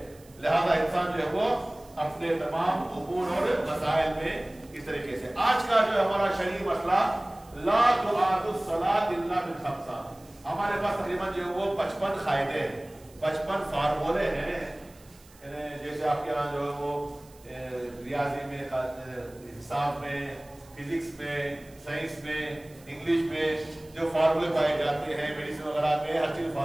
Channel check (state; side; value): noise; right; hiss, 26 dB below the sound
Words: लिहाजा इंसान जो है वो अपने तमाम उमूर और मसाइल में इस तरीके से। आज का जो हमारा शरीय मसला, ला तुआदु सलात इल्ला बिल खम्सा। हमारे पास तकरीबन जो है वो 55 कायदे हैं, 55 फार्मूले हैं। जैसे आपके यहाँ जो है वो रियाजी में, हिसाब में, फिजिक्स में, साइंस में, इंग्लिश में जो फार्मूले पाए जाते हैं, मेडिसिन वगैरह में हर चीज